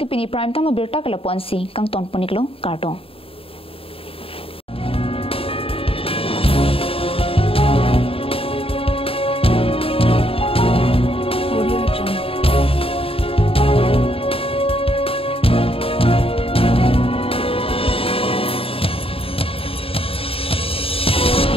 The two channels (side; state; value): right; late; 0.27 ms